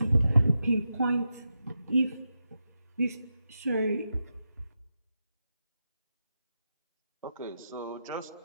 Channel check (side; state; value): both; inverted; correlation -0.88